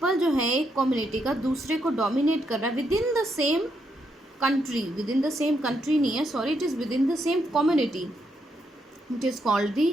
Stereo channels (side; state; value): both; normal; correlation 0.78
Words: जो है एक कम्युनिटी का दूसरे को डोमिनेट कर रहा है within the same country नहीं है, sorry, it is within the same community. It is called the